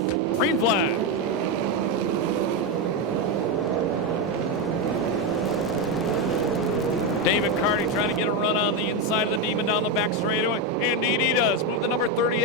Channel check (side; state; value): both; normal; correlation 0.08